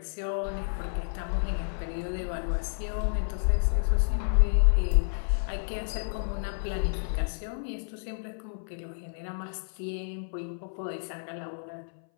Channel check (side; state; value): right; silent; 58 dB below the other